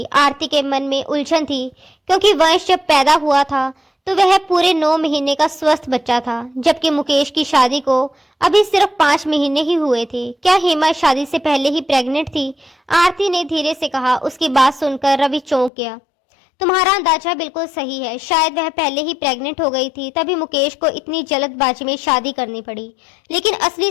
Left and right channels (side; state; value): right; drops out; at 15.7 s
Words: आरती के मन में उलझन थी, क्योंकि वंश जब पैदा हुआ था तो वह पूरे 9 महीने का स्वस्थ बच्चा था, जबकि मुकेश की शादी को अभी सिर्फ 5 महीने ही हुए थे। क्या हेमा शादी से पहले ही प्रेग्नेंट थी? आरती ने धीरे से कहा। उसकी बात सुनकर रवि चौंक गया। तुम्हारा अंदाजा बिल्कुल सही है, शायद वह पहले ही प्रेग्नेंट हो गई थी, तभी मुकेश को इतनी जल्दबाजी में शादी करनी पड़ी। लेकिन असली